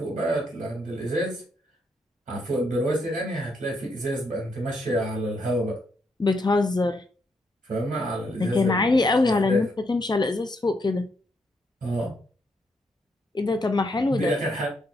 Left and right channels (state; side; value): normal; both; correlation 0.77